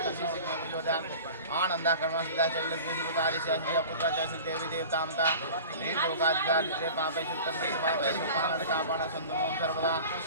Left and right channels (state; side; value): inverted; both; correlation -0.38